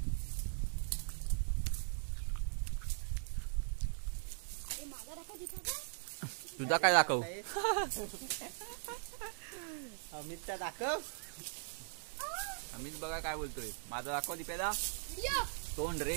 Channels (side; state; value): left; silent; 51 dB below the other